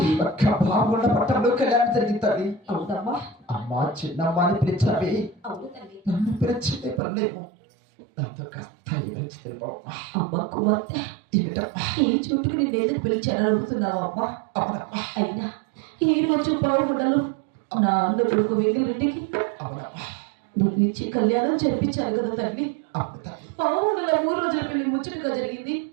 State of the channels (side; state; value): left; drops out; at 7.0 s